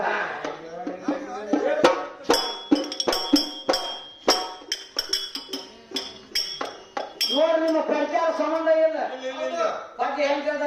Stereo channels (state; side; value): identical; both; correlation 1.00